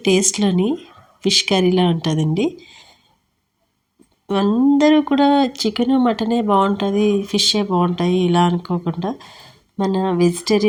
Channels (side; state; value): both; identical; correlation 1.00